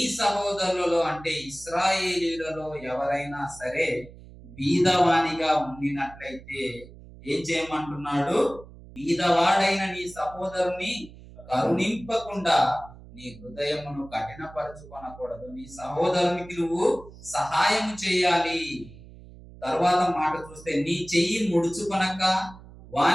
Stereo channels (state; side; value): noise; right; hum, 19 dB below the sound